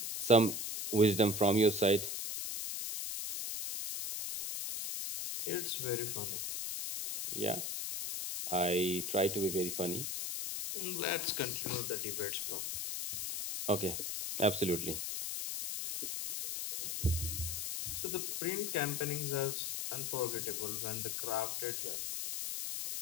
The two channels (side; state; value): left; noise; hiss, 3 dB below the sound